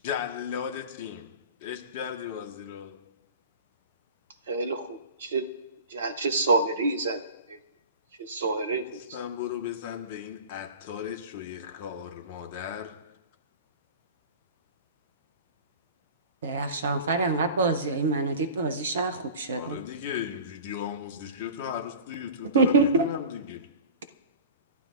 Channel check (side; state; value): both; inverted; correlation -0.36